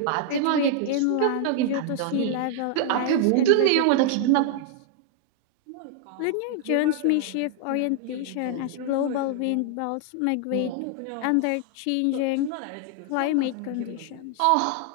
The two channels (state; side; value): different; both; correlation 0.00